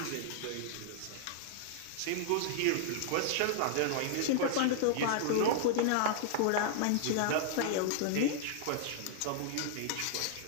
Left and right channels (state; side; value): different; both; correlation -0.01